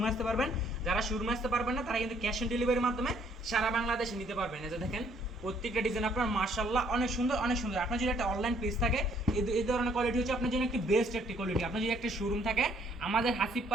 আসতে পারবেন। যারা শোরুমে আসতে পারবেন না তারা কিন্তু ক্যাশ অন ডেলিভারির মাধ্যমে সারা বাংলাদেশে নিতে পারবেন। এই যে দেখেন প্রত্যেকটা ডিজাইন আপনার মাশাআল্লাহ অনেক সুন্দর অনেক সুন্দর। আপনার যদি একটা অনলাইন পেজ থাকে এই ধরনের কোয়ালিটি হচ্ছে আপনার জন্য একটি বেস্ট একটি কোয়ালিটি। আপনার যদি একটা শোরুম থাকে আমাদের হাসিব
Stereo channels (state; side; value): normal; both; correlation 0.65